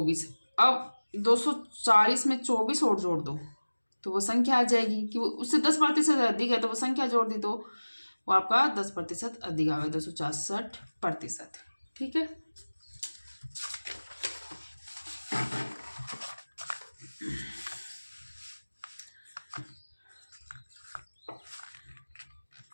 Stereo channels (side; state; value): both; inverted; correlation -1.00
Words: अब 240 में 24 और जोड़ दो तो वो संख्या आ जाएगी कि वो उससे 10% अधिक है, तो वो संख्या जोड़ दी तो वो आपका 10% अधिक आ गया 266%। ठीक है,